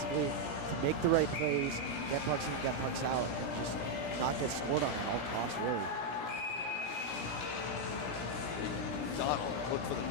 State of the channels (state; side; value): late; right; 17 ms